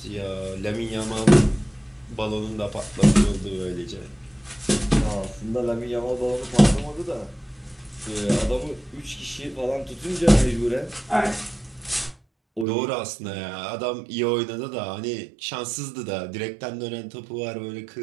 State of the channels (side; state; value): left; drops out; at 12.7 s